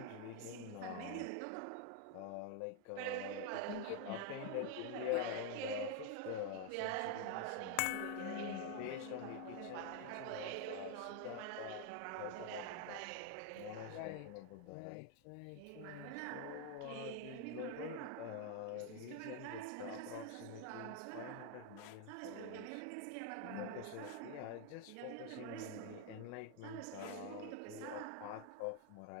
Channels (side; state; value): both; different; correlation 0.01